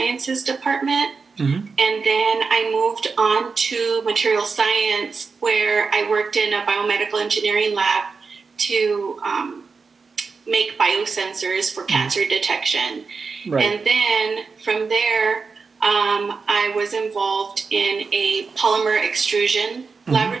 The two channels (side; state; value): left; quieter; 4.8 dB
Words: department. Mm-hmm. And then I moved on to material science, where I worked in a biomedical engineering lab to make biosensors for cancer detection. Right. And then from there, I was involved in a polymer extrusion